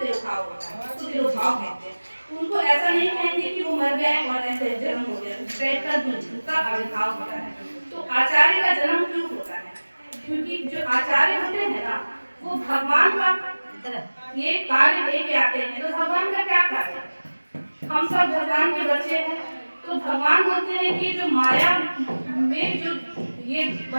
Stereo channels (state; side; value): inverted; both; correlation -1.00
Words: होता है, उसको तिरोभाव कहते हैं। उनको ऐसा नहीं कहेंगे कि वो मर गए और ऐसे जन्म हो गया, उनका आविर्भाव होता है। तो आचार्य का जन्म क्यों होता है? क्योंकि जो आचार्य होते हैं ना वो भगवान का ये कार्य लेके आते हैं। तो भगवान का क्या कार्य है? हम सब भगवान के बच्चे हैं, तो भगवान बोलते हैं कि जो माया में जो ये